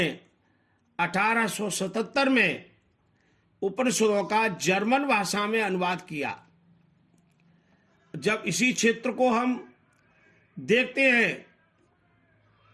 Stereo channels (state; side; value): identical; both; correlation 1.00